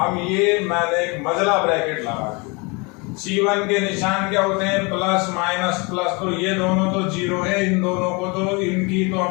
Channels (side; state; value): right; quieter; 28.9 dB